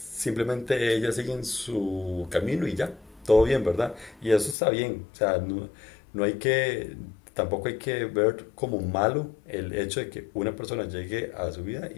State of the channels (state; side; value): drops out; right; at 4.5 s